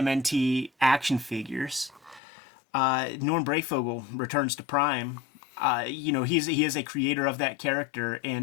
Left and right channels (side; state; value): right; drops out; at 2.2 s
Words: action figures. Norm Brayfogle returns to Prime. He is a creator of that character,